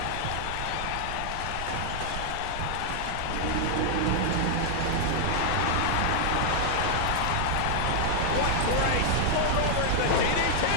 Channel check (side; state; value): both; different; correlation 0.00